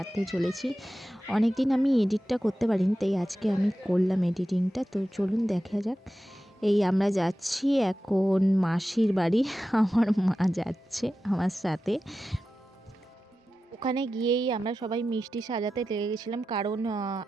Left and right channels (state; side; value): normal; both; correlation 0.93